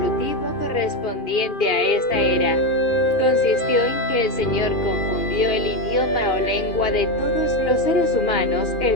correspondiente a esta era consistió en que el Señor confundió el idioma o lengua de todos los seres humanos,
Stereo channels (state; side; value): late; right; 2.4 ms